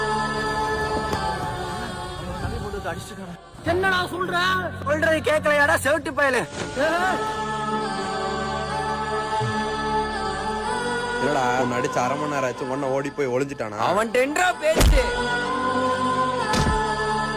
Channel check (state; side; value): identical; both; correlation 1.00